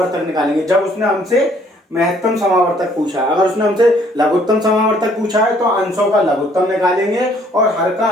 निकालेंगे। जब उसने हमसे महत्तम समावर्तक पूछा, अगर उसने हमसे लघुत्तम समावर्तक पूछा है तो अंशों का लघुत्तम निकालेंगे, और हर का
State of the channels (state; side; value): normal; both; correlation 0.62